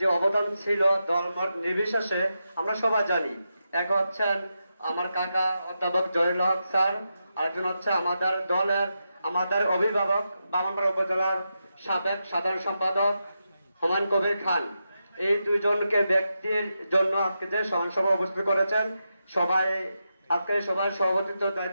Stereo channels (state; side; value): inverted; both; correlation -0.87